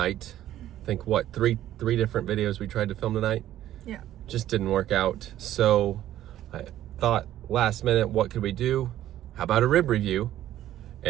I think what, three different videos we tried to film tonight? Yeah. Just didn't work out. So I thought last minute, what could we do? How about a rib review?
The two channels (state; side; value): quieter; left; 12.8 dB